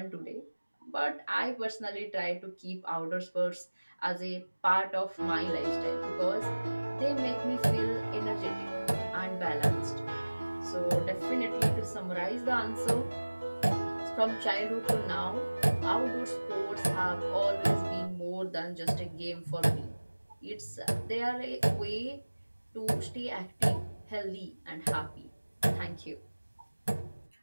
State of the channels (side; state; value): both; inverted; correlation -1.00